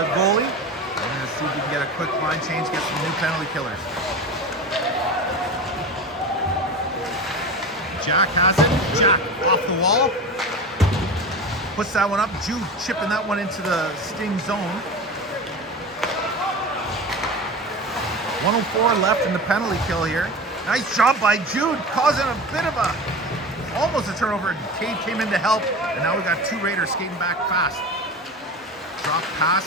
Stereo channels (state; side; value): normal; both; correlation 0.29